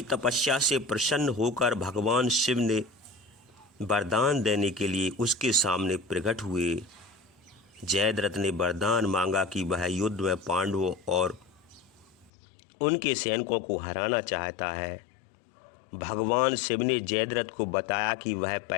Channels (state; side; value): drops out; right; at 12.3 s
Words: तपस्या से प्रसन्न होकर भगवान शिव ने वरदान देने के लिए उसके सामने प्रकट हुए। जयद्रथ ने वरदान मांगा कि वह युद्ध में पांडवों और उनके सैनिकों को हराना चाहता है। भगवान शिव ने जयद्रथ को बताया कि वह